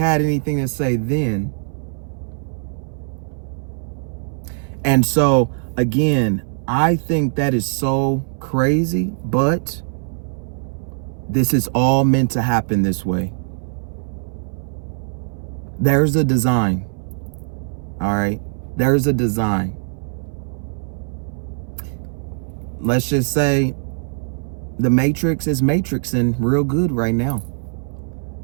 anything to say then. And so, again, I think that is so crazy, but this is all meant to happen this way. There's a design. All right? There's a design. Let's just say the Matrix is matrixing real good right now.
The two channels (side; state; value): left; silent; 61 dB below the other